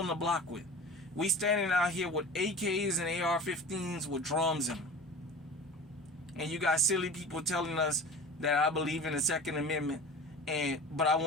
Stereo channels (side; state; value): both; normal; correlation 0.36